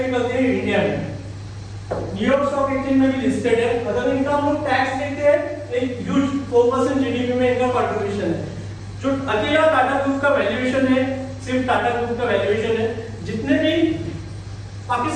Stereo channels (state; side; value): identical; both; correlation 1.00